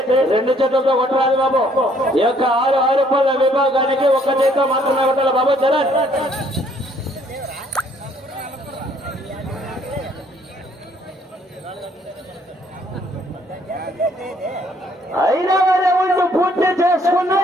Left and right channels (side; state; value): both; normal; correlation 0.64